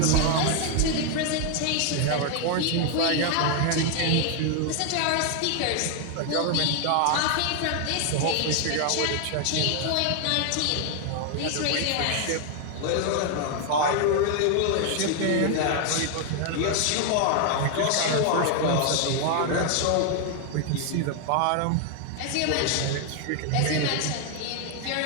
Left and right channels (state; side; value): different; both; correlation 0.00